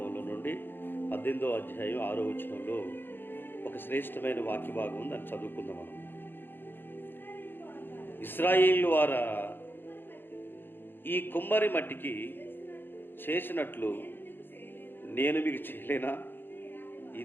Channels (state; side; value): late; right; 0.099 ms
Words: నుండి 18వ అధ్యాయం 6వ వచనంలో ఒక శ్రేష్టమైన వాక్య భాగం ఉంది. దాన్ని చదువుకుందాం మనం. ఇశ్రాయేలు వారా, ఈ కుమ్మరి మట్టికి చేసినట్లు నేను మీకు చేయలేనా?